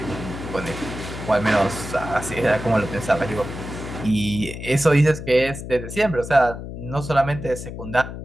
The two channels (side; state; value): left; noise; hum, 9 dB below the sound